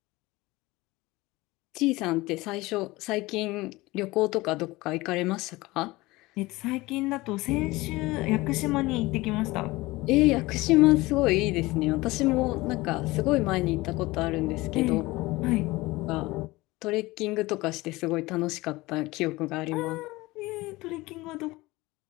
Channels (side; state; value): right; quieter; 20.6 dB